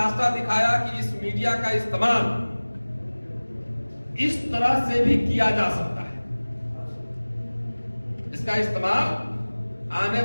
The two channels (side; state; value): both; inverted; correlation -1.00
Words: दिखाया कि इस मीडिया का इस्तेमाल इस तरह से भी किया जा सकता है। इसका इस्तेमाल आने